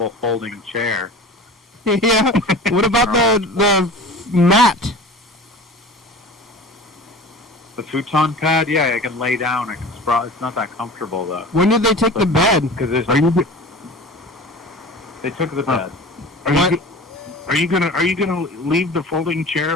folding chair. Yeah. What about the mat? The futon pad? Yeah, I can lay down. I can sprawl. It's not that comfortable though. When did they take the bed? Because they took the bed. Are you gonna leave the folding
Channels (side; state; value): both; normal; correlation 0.38